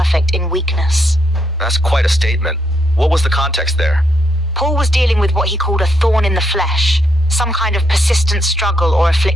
in weakness." That's quite a statement. What was the context there? Paul was dealing with what he called a thorn in the flesh, some kind of persistent struggle or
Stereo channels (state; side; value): normal; both; correlation 0.77